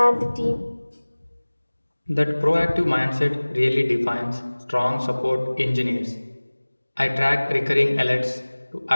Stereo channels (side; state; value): both; inverted; correlation -1.00